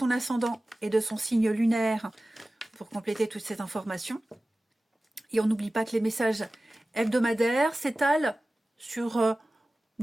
ascendant et de son signe lunaire pour compléter toutes ces informations. Et on n'oublie pas que les messages hebdomadaires s'étalent sur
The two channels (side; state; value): both; normal; correlation 0.96